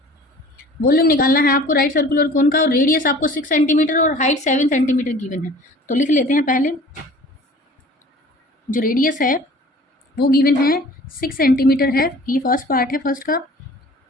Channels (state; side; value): normal; both; correlation 0.46